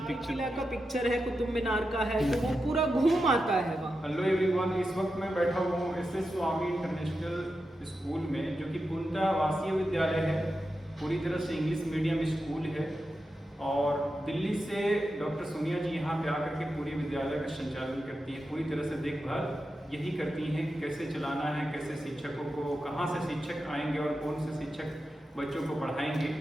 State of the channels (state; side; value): normal; both; correlation 0.89